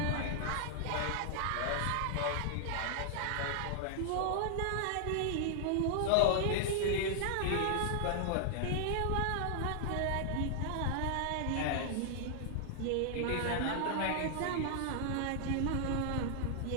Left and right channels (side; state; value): both; different; correlation 0.00